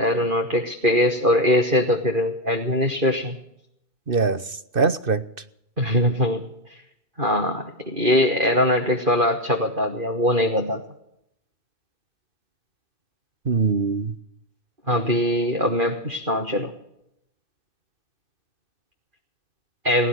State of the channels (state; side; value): late; left; 2.6 ms